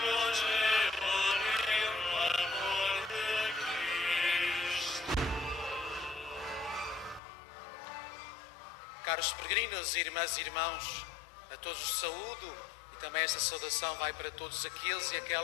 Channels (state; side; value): drops out; right; at 7.2 s